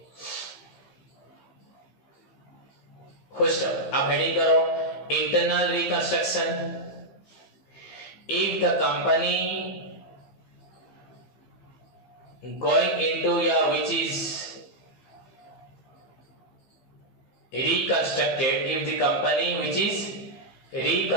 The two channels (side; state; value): right; late; 15 ms